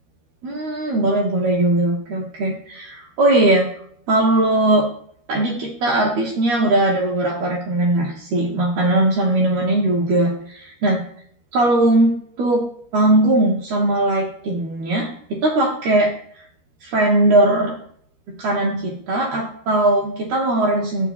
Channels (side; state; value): left; late; 13 ms